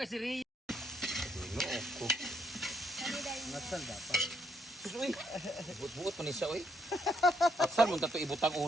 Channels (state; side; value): normal; both; correlation 0.73